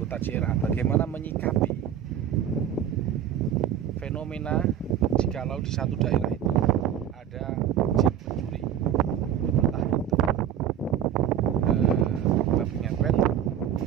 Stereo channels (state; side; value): quieter; left; 9.8 dB